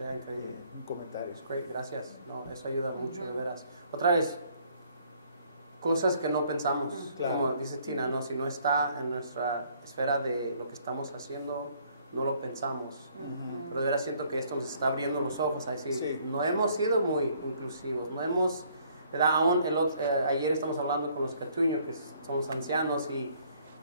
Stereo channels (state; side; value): inverted; both; correlation -0.63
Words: Un comentario. Great, gracias. No, eso ayuda mucho, de veras. Otra vez, cosas que no pensamos, como dice Tina, ¿no? Si no está en nuestra esfera de lo que estamos haciendo, no lo pensamos. Pero de veras siento que esto nos está abriendo los ojos a decir, no hemos sido muy inclusivos, no hemos, ¿verdad? Aún ayer estamos hablando con los catuños, que somos ancianos, y